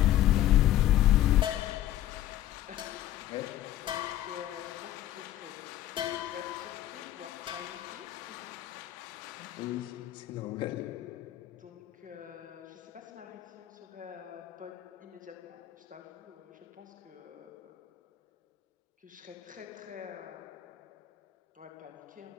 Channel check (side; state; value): right; quieter; 13.1 dB